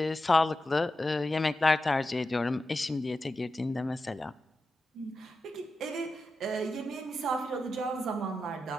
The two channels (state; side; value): normal; both; correlation 0.90